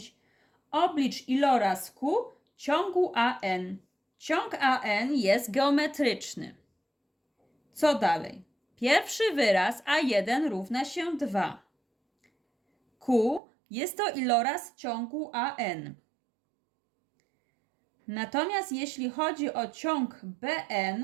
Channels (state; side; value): drops out; left; at 13.4 s